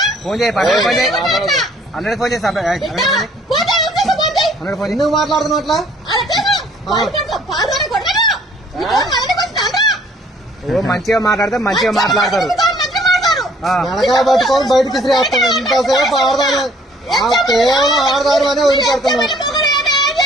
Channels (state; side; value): normal; both; correlation 0.59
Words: ఫోన్ చేయి 100 ఫోన్ చేయి 100 ఫోన్ చేసి 100 ఫోన్ ఎందుకు మాట్లాడుతున్నావు అట్లా మంచిగా మాట్లాడితే మంచిగా మాట్లాడతారు వెనకాల పట్టుకొని బయటకి తీసుకురేస్తాం ఇంతసేపు ఆడదాను కేవలం ఆడదాను అనే వదిలిపెడుతున్నాం